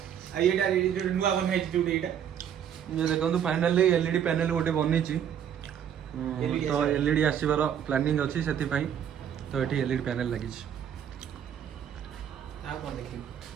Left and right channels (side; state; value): left; quieter; 9.1 dB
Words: ଏଇଟା ନୂଆ ବନା ହେଇଛି ଯୋଉଟା ଏଇଟା। ଇଏ ଦେଖନ୍ତୁ ଫାଇନାଲି ଏଲଇଡି ପ୍ୟାନେଲ ଗୋଟେ ବନେଇଛି। ତ ଏଲଇଡି ଆସିବାର ପ୍ଲାନିଂ ଅଛି, ସେଥିପାଇଁ ତ ଏଠି ଏଲଇଡି ପ୍ୟାନେଲ ଲାଗିଛି। ଆଉ କଣ ଦେଖିବୁ?